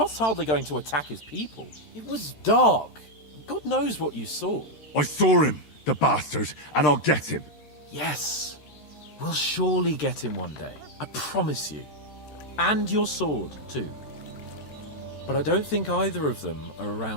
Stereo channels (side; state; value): right; late; 13 ms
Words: hardly going to attack his people. It was dark. God knows what you saw. I saw him, the bastard, and I'll get him. Yes. We'll surely get him one day. I promise you. And your sword, too. But I don't think either of them are